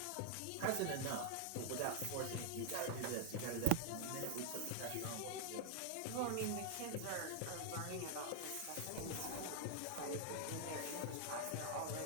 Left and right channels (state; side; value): different; both; correlation 0.00